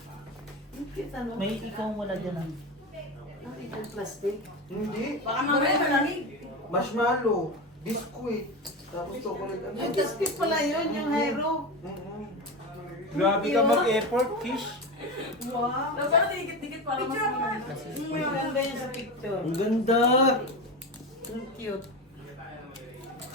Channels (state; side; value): normal; both; correlation 0.22